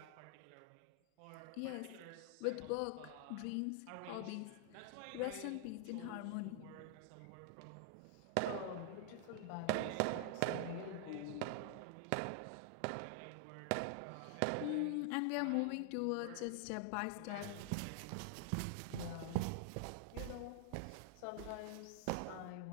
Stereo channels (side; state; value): both; different; correlation 0.00